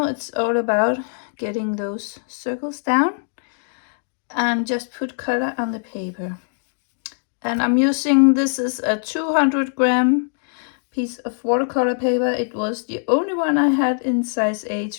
it's all about getting those circles down and just put color on the paper. And I'm using, this is a 200-gram piece of watercolor paper. It was the only one I had in size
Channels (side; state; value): right; silent; digital silence